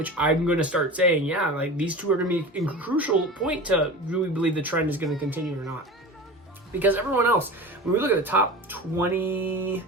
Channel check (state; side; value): normal; both; correlation 0.32